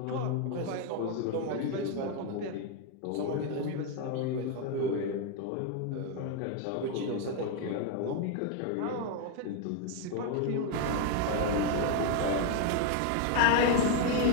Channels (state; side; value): different; both; correlation 0.01